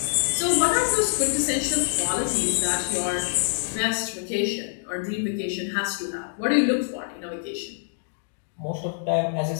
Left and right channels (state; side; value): silent; right; digital silence